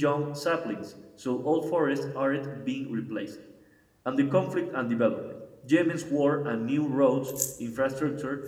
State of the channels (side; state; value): both; identical; correlation 1.00